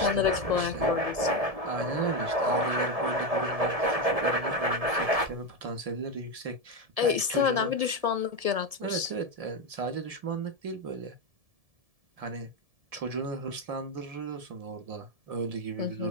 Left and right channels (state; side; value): late; left; 1.7 ms